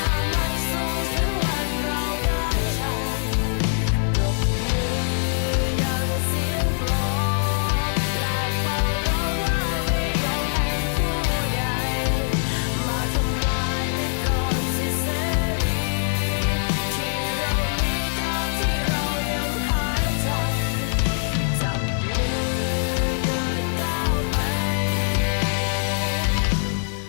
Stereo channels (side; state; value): right; silent; digital silence